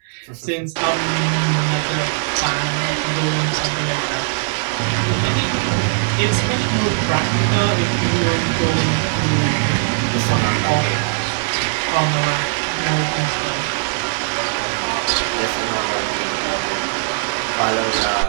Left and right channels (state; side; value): silent; left; digital silence